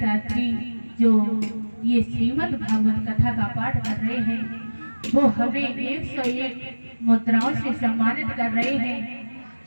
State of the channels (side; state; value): both; inverted; correlation -1.00